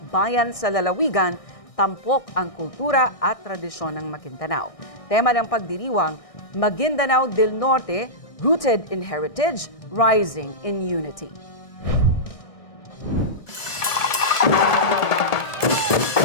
bayan sa lalawigan, tampok ang kultura at tradisyon ng Maguindanao. Tema ng pagdiriwang, Maguindanao del Norte, Rooted in Heritage, Rising in Unity.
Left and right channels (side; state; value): right; late; 1.7 ms